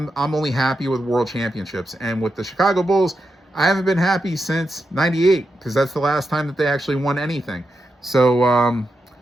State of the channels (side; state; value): both; normal; correlation 0.87